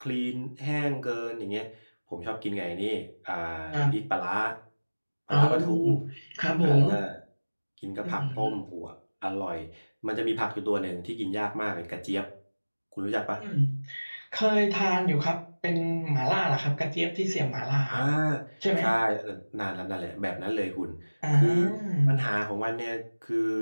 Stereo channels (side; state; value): both; inverted; correlation -1.00